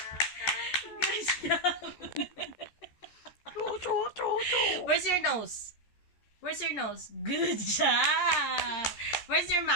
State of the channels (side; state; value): right; late; 14 ms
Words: Good job. Where's your nose? Where's your nose? Good job. Where's your